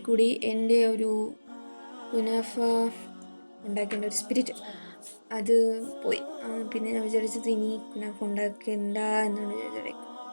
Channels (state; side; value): inverted; both; correlation -1.00